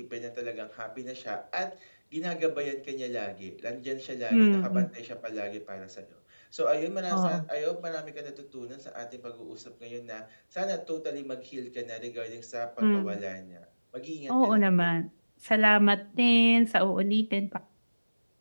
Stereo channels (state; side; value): inverted; both; correlation -1.00